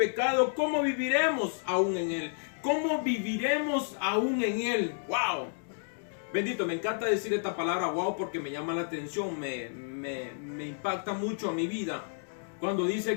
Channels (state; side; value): silent; right; digital silence